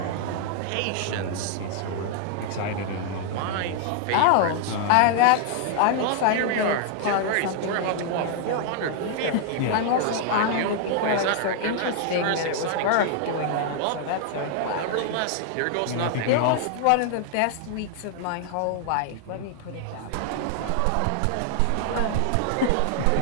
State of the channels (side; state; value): both; different; correlation 0.00